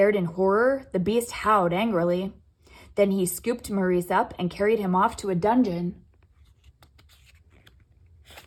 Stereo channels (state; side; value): identical; both; correlation 1.00